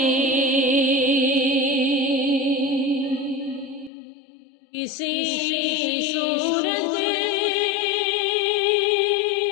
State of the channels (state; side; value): drops out; right; at 3.9 s